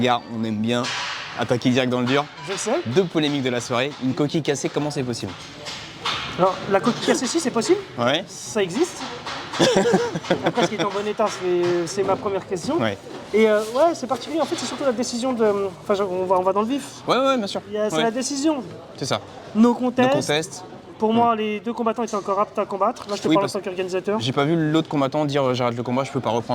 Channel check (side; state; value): both; identical; correlation 1.00